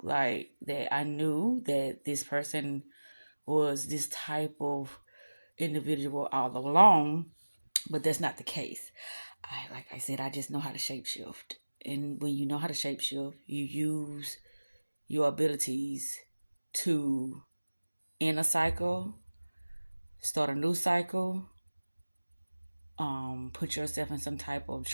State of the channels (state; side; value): inverted; both; correlation -1.00